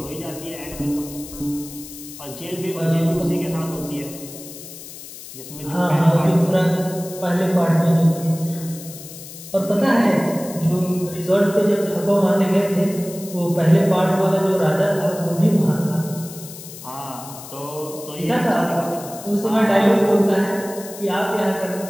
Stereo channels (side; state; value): left; noise; hiss, 14 dB below the sound